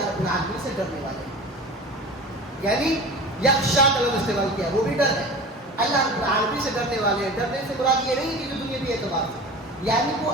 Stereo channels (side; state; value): both; normal; correlation 0.35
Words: رب العالمین سے ڈرنے والے ہیں۔ یعنی یخشا کا لفظ استعمال کیا، وہ بھی ڈر ہے، اللہ رب العالمین سے ڈرنے والے ہیں۔ ڈرنے سے مراد یہ نہیں کہ جو دنیاوی اعتبار سے، یعنی وہ